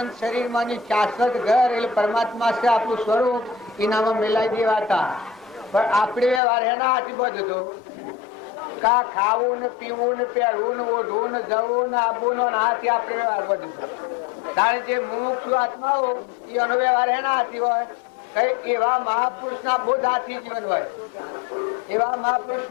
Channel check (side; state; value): right; drops out; at 6.4 s